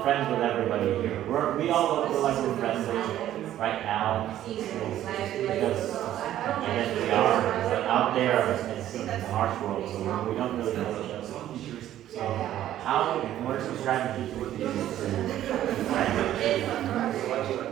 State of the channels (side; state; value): left; quieter; 12.4 dB